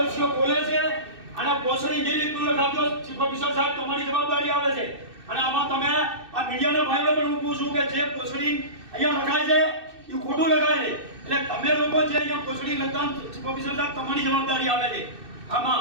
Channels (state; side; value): late; left; 2.6 ms